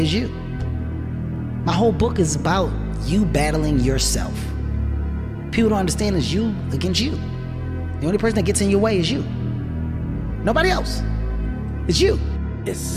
you. My whole book is about you battling yourself. People don't understand it's you against you. The only person that gets in your way is you. Nobody else. It's you. It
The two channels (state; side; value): identical; both; correlation 1.00